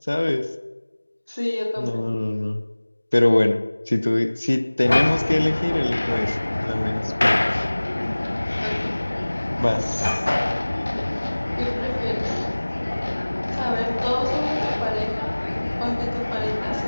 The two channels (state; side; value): inverted; both; correlation -1.00